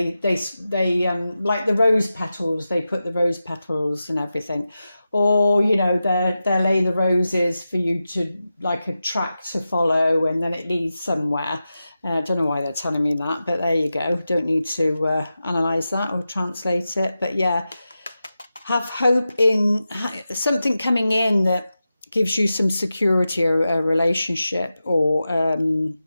like the rose petals, they put the rose petals and everything, or you know, they lay the roses for you to, like, a track to follow, and then it leads somewhere. I don't know why they're telling me that, but there you go. Don't need to analyse that or translate it. But yeah, have hope in something coming in that gives you some security, or a relationship, or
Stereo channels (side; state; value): both; inverted; correlation -0.92